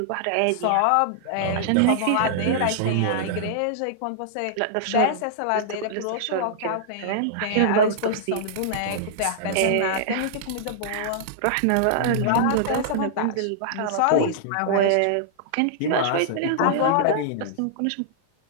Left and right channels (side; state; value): both; different; correlation -0.01